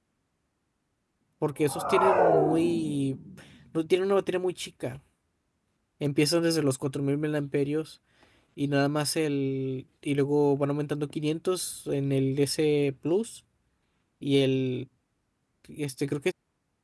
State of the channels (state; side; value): identical; both; correlation 1.00